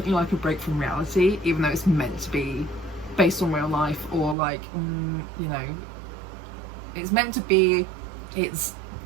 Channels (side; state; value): left; drops out; at 4.4 s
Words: like a break from reality, even though it's meant to be based on real life, or like you know, it's meant to be